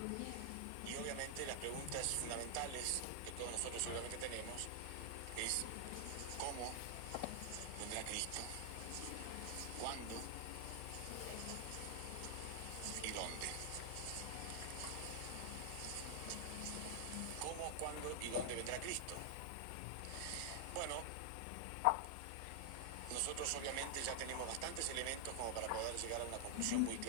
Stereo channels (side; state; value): both; different; correlation 0.00